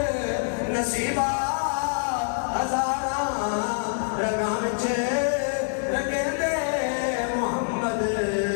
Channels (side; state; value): right; silent; digital silence